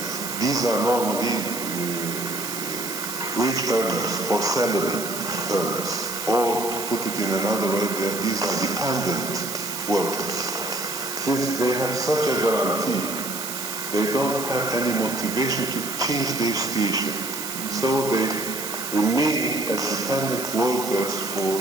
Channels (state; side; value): noise; right; hiss, 6 dB below the sound